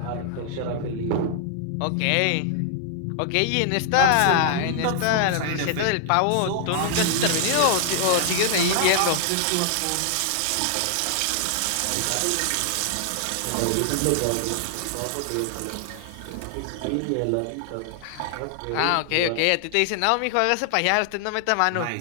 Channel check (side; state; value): both; different; correlation 0.00